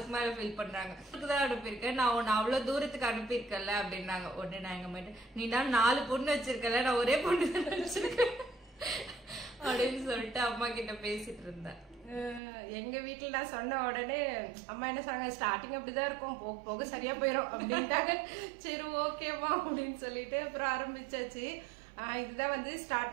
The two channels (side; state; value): left; drops out; at 12.4 s